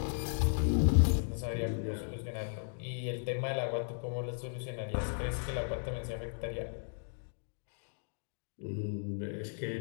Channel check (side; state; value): right; silent; digital silence